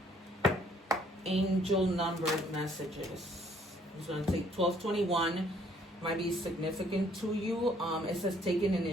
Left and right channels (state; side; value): normal; both; correlation 0.63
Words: Angel number messages. I'm just going to take 1221. Might be significant to you. It says taking